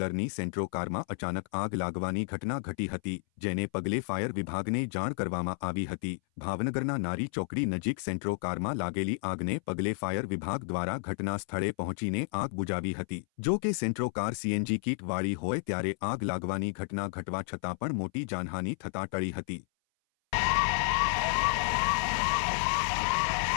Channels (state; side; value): silent; right; 57 dB below the other